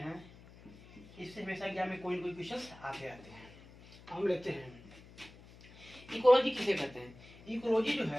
इससे हमेशा एग्जाम में कोई न कोई क्वेश्चन आते रहते हैं। हम लेते हैं इकोलॉजी किसे कहते हैं। इकोलॉजी जो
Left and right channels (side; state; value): left; noise; hum, 21 dB below the sound